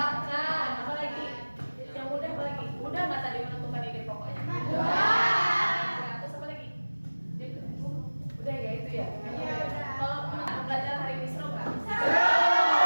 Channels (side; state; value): both; inverted; correlation -1.00